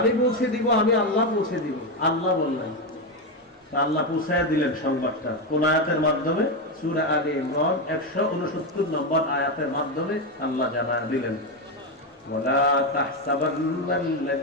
পৌঁছে দিব, আমি আল্লাহ পৌঁছে দিব। আল্লাহ বললেন, আল্লাহ পৌঁছায়া দিলেন সংবাদটা কোন আয়াতের মাধ্যমে? সূরা আলে ইমরান 169 নম্বর আয়াতের মাধ্যমে আল্লাহ জানায়া দিলেন, ওয়ালা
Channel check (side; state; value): both; normal; correlation 0.10